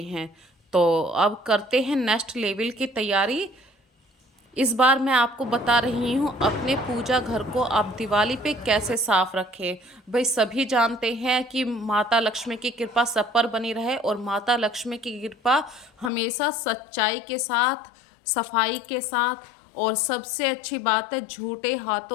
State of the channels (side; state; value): right; drops out; at 16.1 s